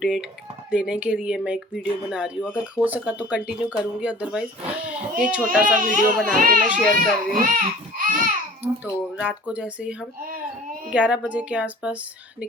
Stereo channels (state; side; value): normal; both; correlation 0.46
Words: देने के लिए मैं एक वीडियो बना रही हूँ। अगर हो सका तो कंटिन्यू करूँगी, अदरवाइज़ ये छोटा सा वीडियो बना के मैं शेयर कर रही हूँ। तो रात को जैसे ही हम 11 बजे के आसपास